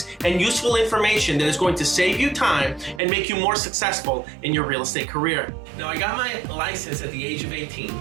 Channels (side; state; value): left; drops out; at 3.0 s